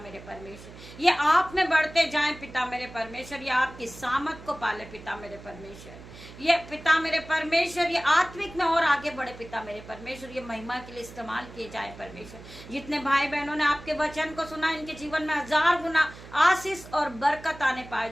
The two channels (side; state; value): right; noise; hum, 17 dB below the sound